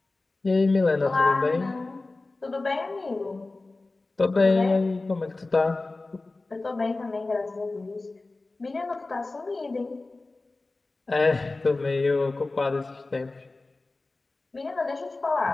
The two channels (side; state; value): right; quieter; 3.3 dB